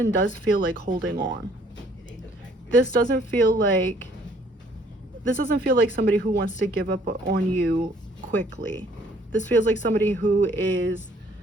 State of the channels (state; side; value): normal; both; correlation 0.61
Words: feel like holding on. This doesn't feel like somebody who wants to give up on you quickly. This feels like somebody who is